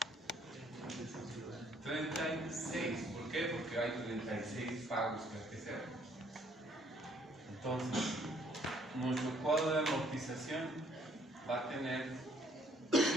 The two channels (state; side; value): normal; both; correlation 0.63